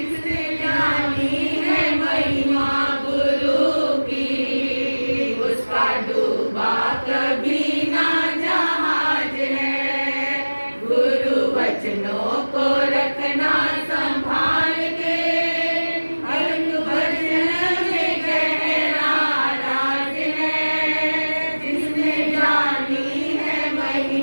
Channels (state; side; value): inverted; both; correlation -1.00